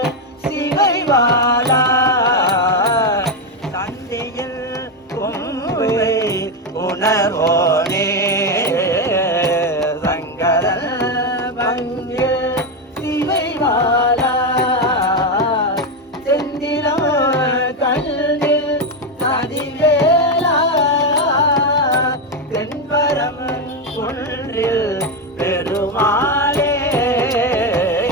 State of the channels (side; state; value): both; normal; correlation 0.09